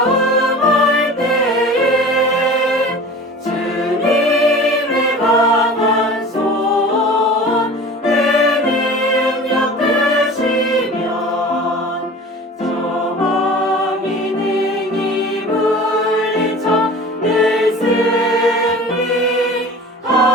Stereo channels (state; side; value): normal; both; correlation 0.40